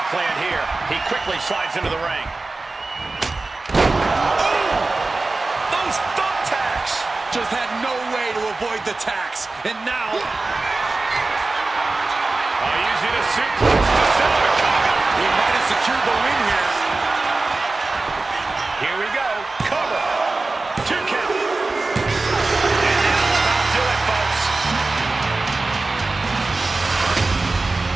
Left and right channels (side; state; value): left; quieter; 3.4 dB